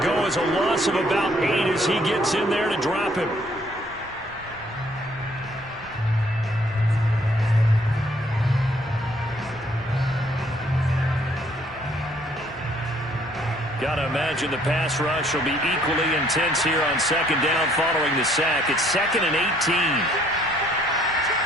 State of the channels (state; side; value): normal; both; correlation 0.64